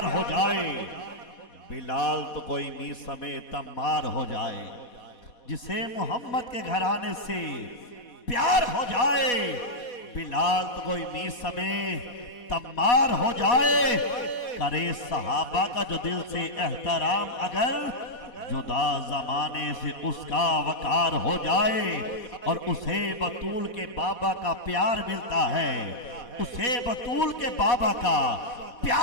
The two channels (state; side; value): late; right; 4.1 ms